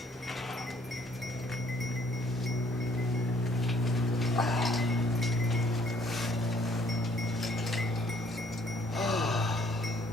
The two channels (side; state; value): both; normal; correlation 0.62